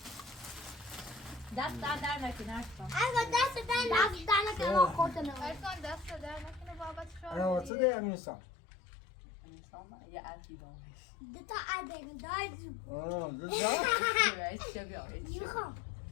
دست در نکنه اشکان دست دست ما خوردن ارسان دست در نکنه بابت انا واسه ده امیرسان دتا عدن دایز آه میخوام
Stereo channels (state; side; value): drops out; right; at 7.7 s